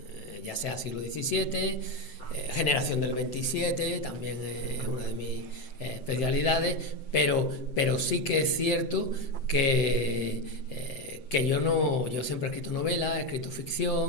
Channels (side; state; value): right; late; 7.7 ms